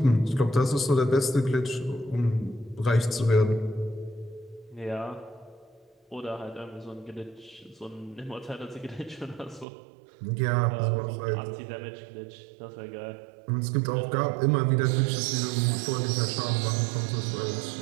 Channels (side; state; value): left; drops out; at 9.7 s